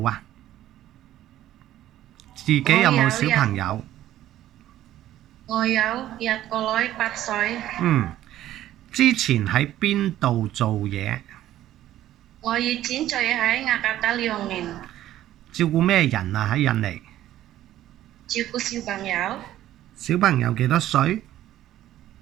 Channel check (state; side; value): quieter; left; 13.2 dB